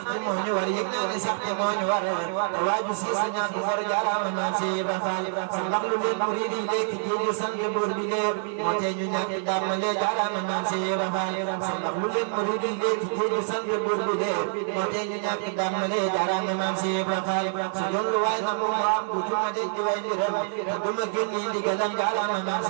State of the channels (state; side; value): silent; left; digital silence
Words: ci moo ñu war yëg naa ni sax ci moo ñu war te waaju si su ñàkk war jaaraama maam si Ibra Faal sa mbax lu leen murid yi léegi jéegi sant buur bi leer moo tee ñu ñàkk dàmmale jaaraama maam si Ibra Faal sa mbax lu leen murid yi léegi jéegi sant buur bi leer moo tee ñu ñàkk dàmmale jaaraama maam si Ibra Faal su doon lu waay na mu ma am du ma denc di way mbiram te du ma génn yi ndigalam jaaraama maam